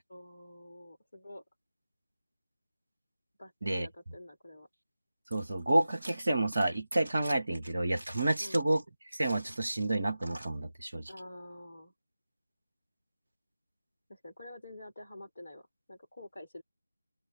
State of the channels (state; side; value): inverted; both; correlation -0.94